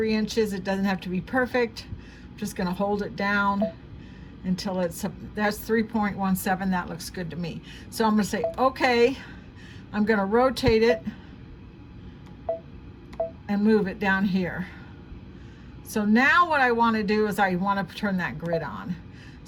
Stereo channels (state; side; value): identical; both; correlation 1.00